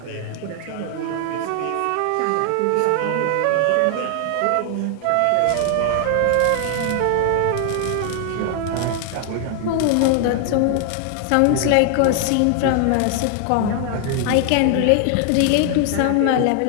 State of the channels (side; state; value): both; different; correlation 0.00